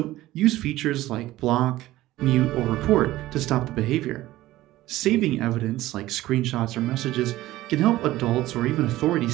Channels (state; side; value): quieter; left; 16.3 dB